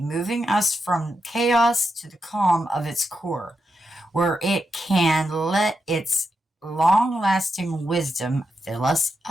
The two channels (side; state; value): both; normal; correlation 0.86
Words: us from chaos to the calm of its core. where it can let its long-lasting wisdom fill us